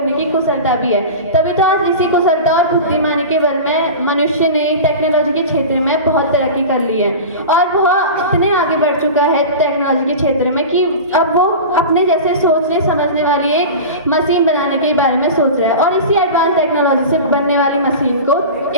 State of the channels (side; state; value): both; inverted; correlation -0.30